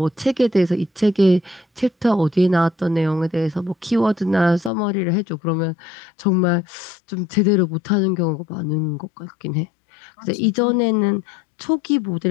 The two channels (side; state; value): right; drops out; at 4.7 s